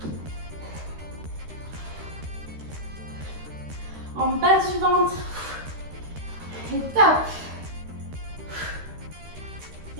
En bas du ventre. Et top.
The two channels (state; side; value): late; left; 13 ms